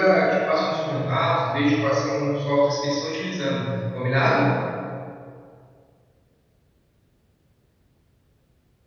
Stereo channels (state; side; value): identical; both; correlation 1.00